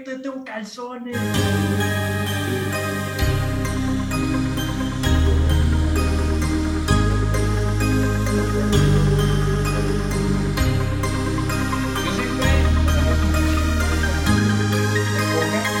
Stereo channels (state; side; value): identical; both; correlation 1.00